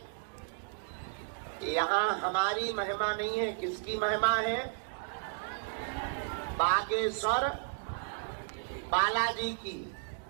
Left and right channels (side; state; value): left; silent; digital silence